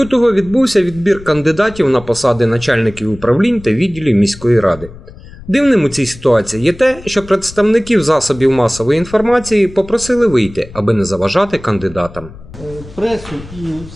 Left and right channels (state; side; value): noise; left; rumble, 17 dB below the sound